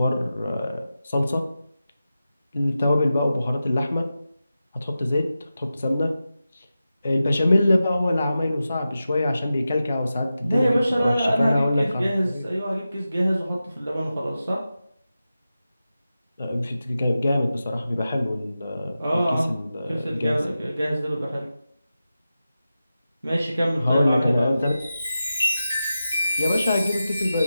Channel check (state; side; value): inverted; both; correlation -0.92